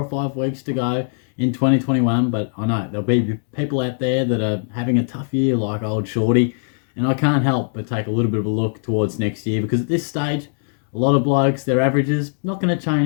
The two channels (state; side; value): silent; right; digital silence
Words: or 5 weeks to go in 2021, but I know there'll be people out there that are having a tough year like old Shorty, and I can't help but take a little bit of a look towards next year because at this stage, a lot of blokes, their averages, not going to